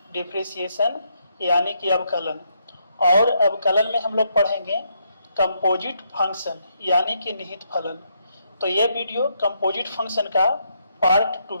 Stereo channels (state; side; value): inverted; both; correlation -0.77